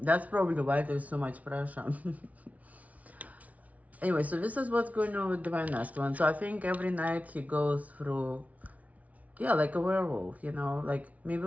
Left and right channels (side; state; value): left; late; 0.069 ms